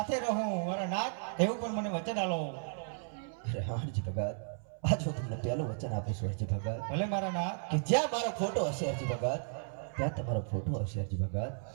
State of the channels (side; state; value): left; silent; 55 dB below the other